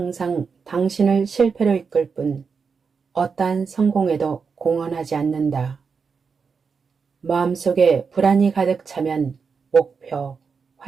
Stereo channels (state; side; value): quieter; left; 5.5 dB